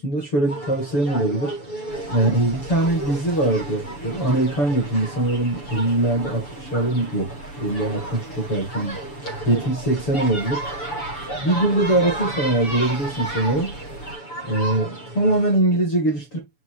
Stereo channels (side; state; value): right; late; 7.0 ms